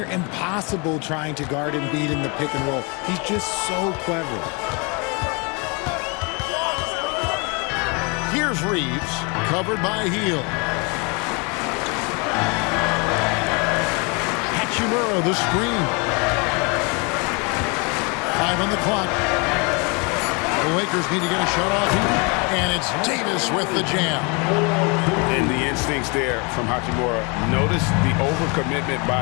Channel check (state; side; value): quieter; right; 31.3 dB